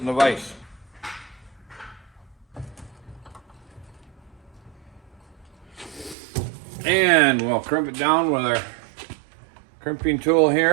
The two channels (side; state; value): left; drops out; at 6.2 s